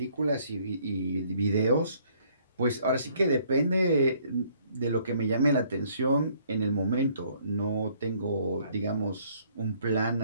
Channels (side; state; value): both; inverted; correlation -0.64